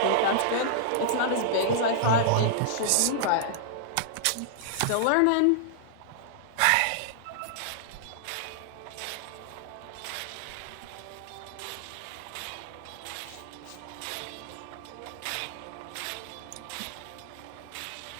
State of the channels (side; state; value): both; different; correlation -0.01